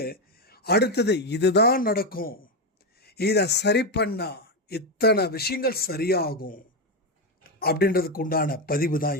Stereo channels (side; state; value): both; normal; correlation 0.09